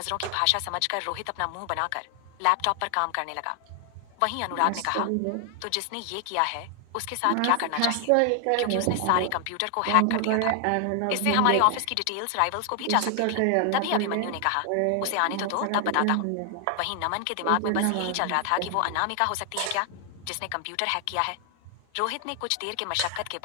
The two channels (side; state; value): both; different; correlation 0.00